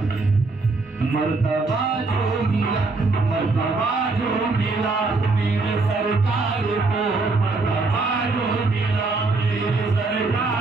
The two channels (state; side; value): quieter; left; 3.6 dB